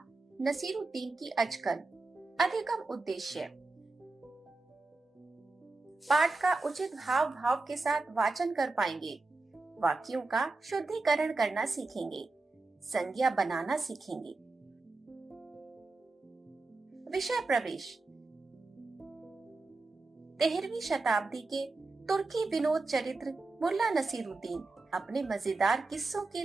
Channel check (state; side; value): quieter; left; 3.5 dB